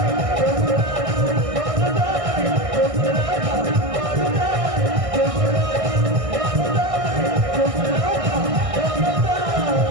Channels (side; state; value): left; late; 1.6 ms